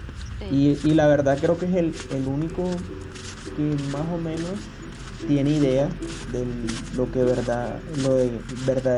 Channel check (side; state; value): both; identical; correlation 1.00